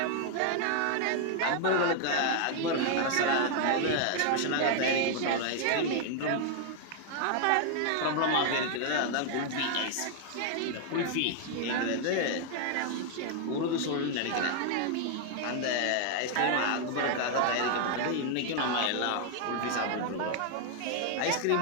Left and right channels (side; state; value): both; different; correlation 0.00